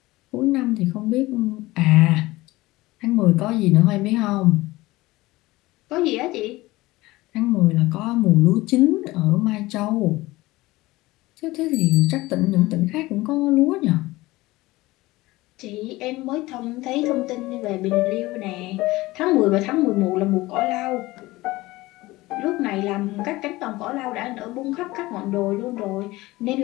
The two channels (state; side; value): quieter; right; 19.4 dB